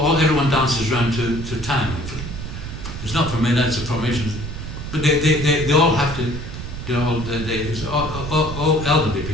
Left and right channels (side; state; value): right; noise; rumble, 8 dB below the sound